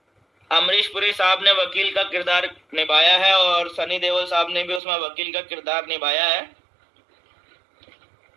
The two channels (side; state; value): left; drops out; at 4.8 s